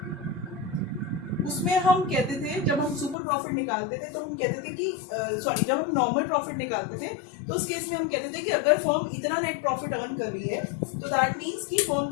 उसमें हम कहते थे, जब हम सुपर प्रॉफिट निकालते थे तो हम कहते थे कि जब हम नॉर्मल प्रॉफिट निकालते थे तो उस केस में हम कहते थे कि अगर फर्म इतना नेट प्रॉफिट अर्न कर रही है तो दैट मीन्स कि फर्म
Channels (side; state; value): right; drops out; at 3.2 s